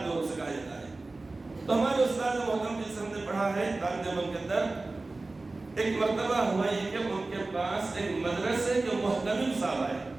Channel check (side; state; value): left; quieter; 3.3 dB